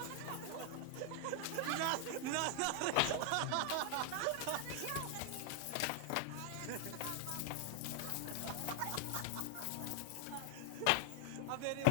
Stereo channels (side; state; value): both; different; correlation 0.00